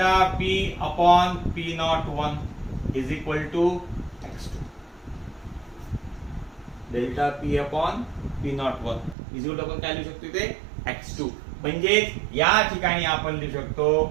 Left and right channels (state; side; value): drops out; left; at 9.2 s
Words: P upon P01 is equal to x2. Delta P upon P01 is equal to, आपण काय लिहू शकतो इथे, x2. म्हणजे या ठिकाणी आपण लिहू